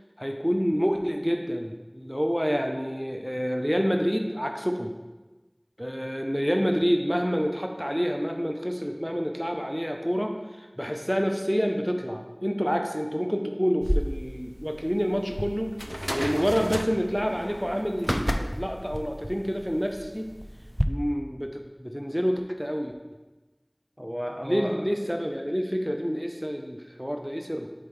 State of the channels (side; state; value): both; identical; correlation 1.00